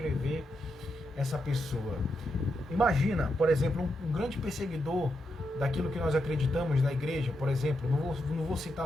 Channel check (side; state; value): both; normal; correlation 0.84